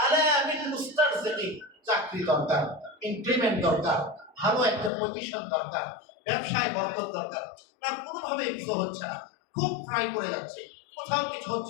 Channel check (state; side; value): drops out; right; at 4.9 s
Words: আলা মিন মুস্তারজিকি, চাকরি দরকার, ইনক্রিমেন্ট দরকার, ভালো একটা পজিশন দরকার, ব্যবসায় বরকত দরকার, না কোনোভাবে কিছু হচ্ছে না, খুব ট্রাই করে যাচ্ছে, কোথাও কিছু